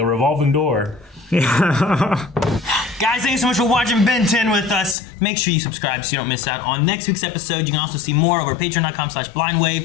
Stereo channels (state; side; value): drops out; right; at 5.0 s